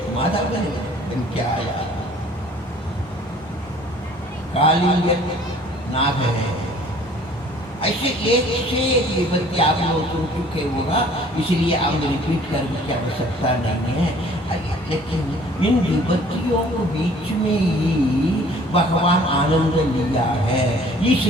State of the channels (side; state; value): both; normal; correlation 0.53